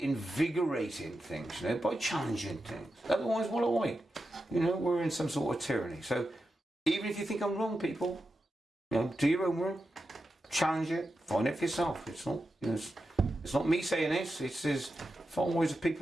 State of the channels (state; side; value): normal; both; correlation 0.89